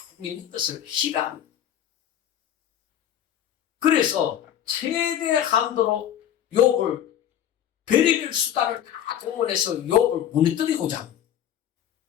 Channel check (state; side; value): quieter; right; 10.2 dB